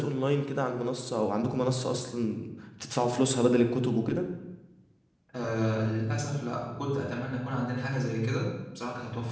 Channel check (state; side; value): identical; both; correlation 1.00